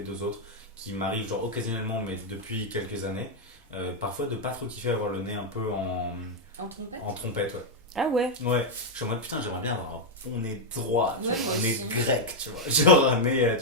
deux autres, qui m'arrive genre occasionnellement, mais depuis quelques années. Parfois de pas trop kiffer avoir le nez un peu En trompette? en trompette, ouais. Ah ouais. Ouais, je suis en mode putain, j'aimerais bien avoir un bon nez droit, tu Ouais, vois, moi un nez aussi. grec, tu vois. Genre un nez,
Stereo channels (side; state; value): both; normal; correlation 0.00